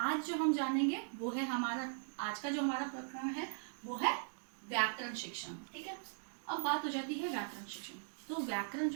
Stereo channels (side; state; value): left; silent; digital silence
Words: जो हम जानेंगे वो है आज का जो हमारा प्रकरण है वो है व्याकरण शिक्षण, ठीक है। अब बात हो जाती है व्याकरण शिक्षण। तो व्याकरण